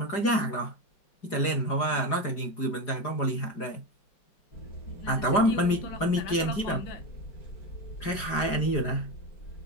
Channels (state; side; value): late; right; 4.9 ms